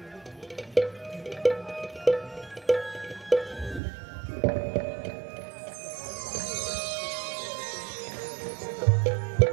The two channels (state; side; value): drops out; left; at 3.8 s